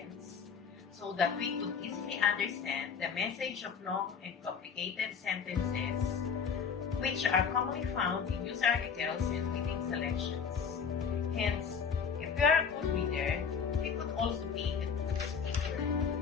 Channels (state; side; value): quieter; right; 6.4 dB